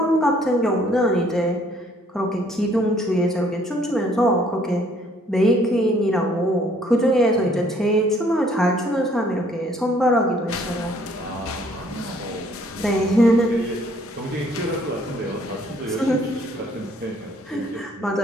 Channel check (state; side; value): normal; both; correlation 0.62